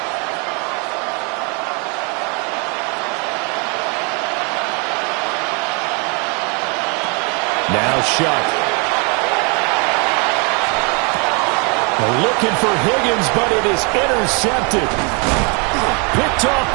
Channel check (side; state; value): left; quieter; 33.4 dB